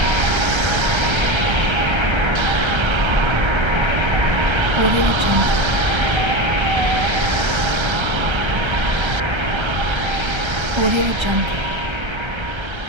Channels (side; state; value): left; late; 1.3 ms